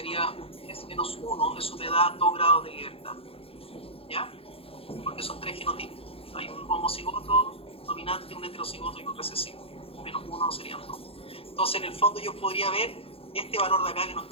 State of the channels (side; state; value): right; late; 0.27 ms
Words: un s-1, eso me da 2 grados de libertad, ¿ya? Porque son 3 genotipos, hay un homocigoto dominante, un heterocigoto y un recesivo, menos 1 serían 2. Entonces en el fondo yo podría ver este valor de acá que no